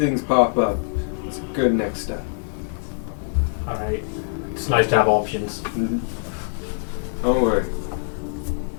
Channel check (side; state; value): right; silent; digital silence